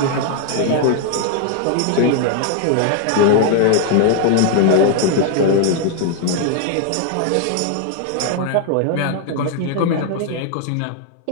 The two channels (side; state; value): both; different; correlation 0.00